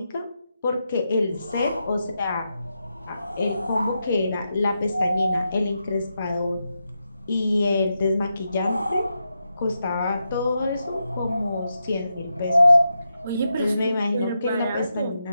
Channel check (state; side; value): inverted; both; correlation -0.86